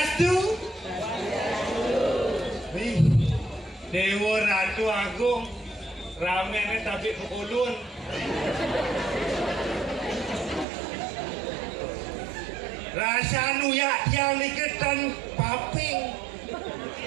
Dewa Ratu Agung ramene tapi pukulun. Rasa nuyak yang diketan paping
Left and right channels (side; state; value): left; drops out; at 10.7 s